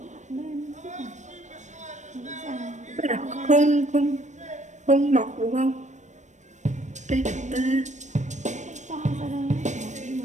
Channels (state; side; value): late; left; 0.34 ms